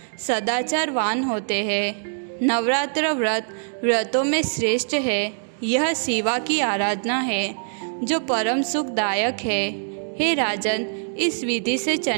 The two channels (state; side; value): silent; left; digital silence